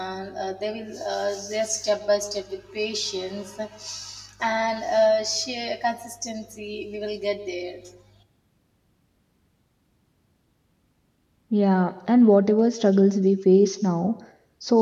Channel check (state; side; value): identical; both; correlation 1.00